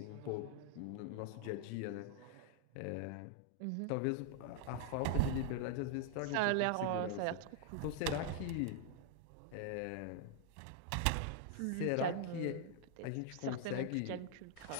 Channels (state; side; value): different; both; correlation 0.00